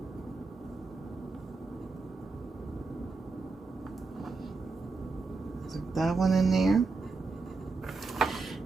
That one in there.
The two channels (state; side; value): quieter; left; 3.9 dB